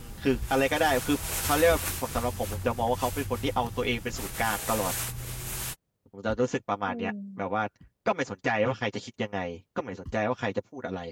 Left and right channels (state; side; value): identical; both; correlation 1.00